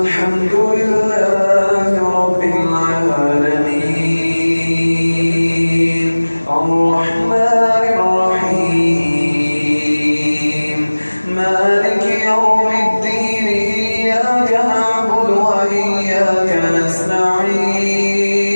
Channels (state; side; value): inverted; both; correlation -1.00